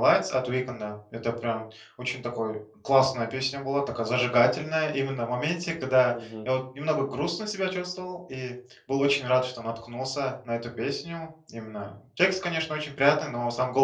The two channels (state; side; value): identical; both; correlation 1.00